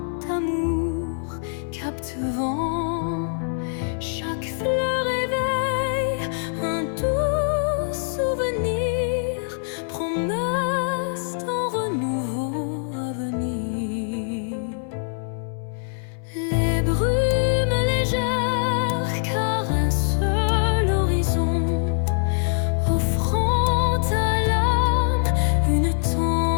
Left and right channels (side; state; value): right; silent; 63 dB below the other